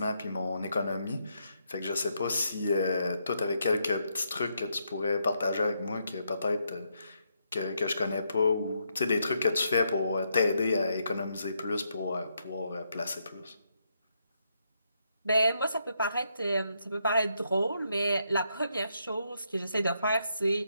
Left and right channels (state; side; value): inverted; both; correlation -0.78